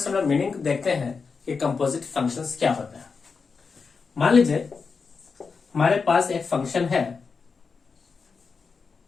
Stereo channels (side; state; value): right; quieter; 5.1 dB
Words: हम लोग मीनिंग देखते हैं कि कंपोजिट फंक्शंस क्या होता है। मान लीजिए हमारे पास एक फंक्शन है,